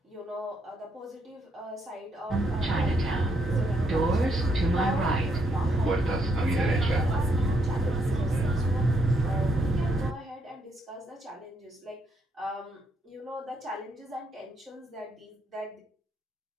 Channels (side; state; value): both; normal; correlation 0.75